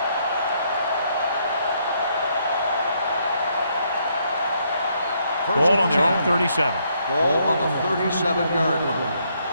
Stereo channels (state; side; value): inverted; both; correlation -0.72